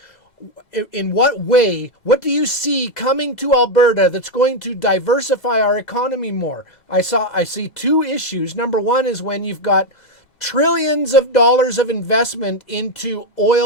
in what way, what do you see coming to Alberta that's going to diversify our economy more? I see two issues. Number one is when you've got trillions of dollars of investment into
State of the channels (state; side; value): late; right; 2.0 ms